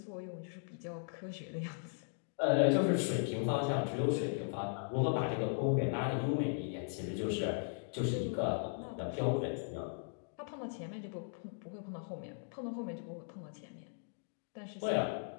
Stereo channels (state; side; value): silent; right; digital silence